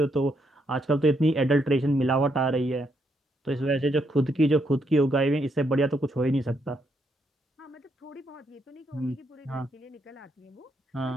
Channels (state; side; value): normal; both; correlation 0.76